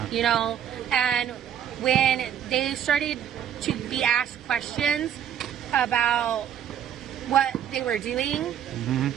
You know? And when they started to be asked questions about what they were doing,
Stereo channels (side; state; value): left; quieter; 9.4 dB